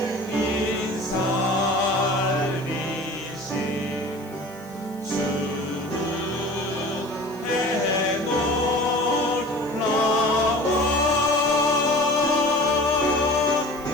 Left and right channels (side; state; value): left; noise; hiss, 24 dB below the sound